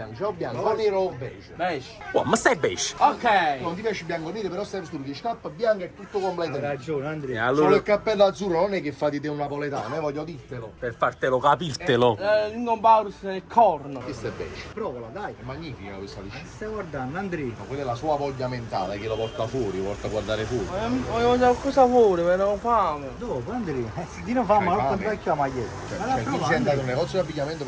C'è o bianco, o nero o beige? Beige. Oh, ma stai beige? Ok. Non ti piace il bianco nero, però stai vestito di scarpa bianca e tutto Hai completo. ragione, E Andrea. Solo allora, il cappello azzurro non è che fa di te un napoletano, voglio dirtelo. per fartelo capirtelo. L'ingompaurus nel corno. Questo è beige. Provala, dai. È magnifica questa liscina. Stai guardando, Andrea. Ma quella è la sua voglia mentale che lo porta fuori, lo porta a guardare fuori. Voglio mangiare qualcosa fuori, però ho fame. Dopo, Andrea. Dino fa, ma non vecchio la maglietta. Cioè, tu sei andato in un negozio di abbigliamento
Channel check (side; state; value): both; identical; correlation 1.00